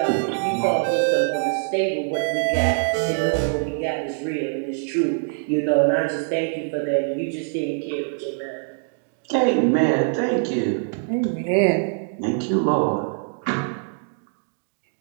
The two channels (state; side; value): silent; left; 63 dB below the other